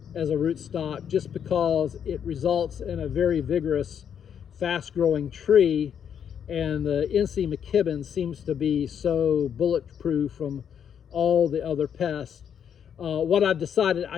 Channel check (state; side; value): quieter; right; 8.3 dB